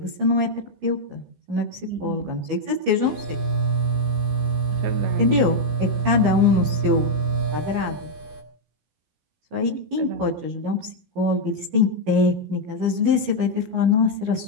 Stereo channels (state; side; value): late; left; 14 ms